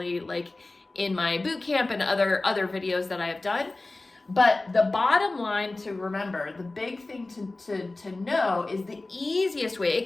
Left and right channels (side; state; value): right; quieter; 3.1 dB